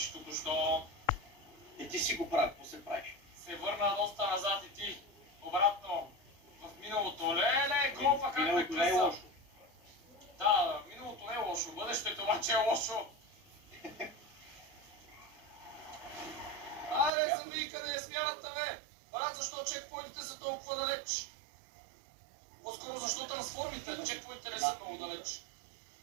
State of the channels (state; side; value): drops out; left; at 17.1 s